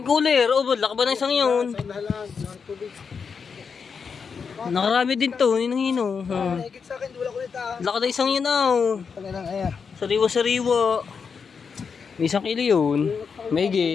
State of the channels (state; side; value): quieter; right; 5.9 dB